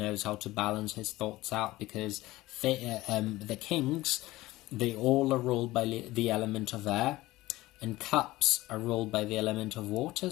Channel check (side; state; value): right; quieter; 18.2 dB